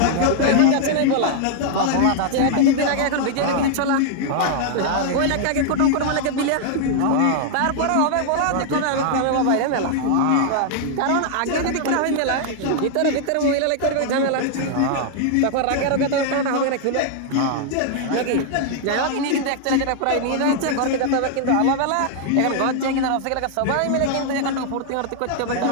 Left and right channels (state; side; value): different; both; correlation 0.00